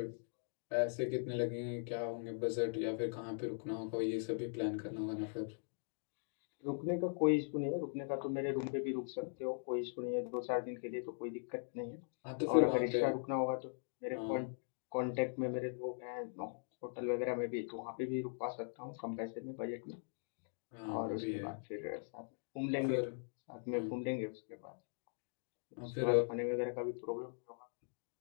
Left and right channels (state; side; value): silent; right; digital silence